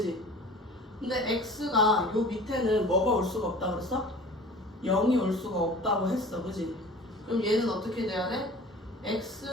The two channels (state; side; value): normal; both; correlation 0.43